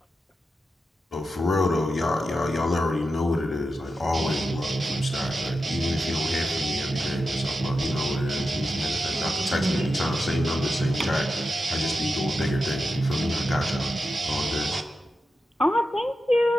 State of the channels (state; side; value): normal; both; correlation 0.90